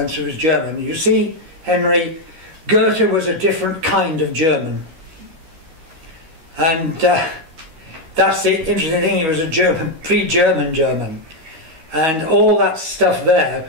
who was German, you see, Henry, Goethe was a different kind of German. And that's the interesting thing, he was a German, pre-German German. And all that stuff there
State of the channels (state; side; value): late; left; 13 ms